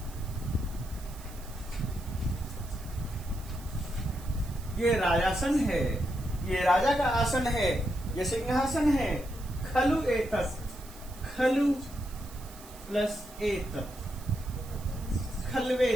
ये राजासन है, ये राजा का आसन है, ये सिंहासन है। खलु एतत्, खलु प्लस एतत्,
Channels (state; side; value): noise; right; hiss, 19 dB below the sound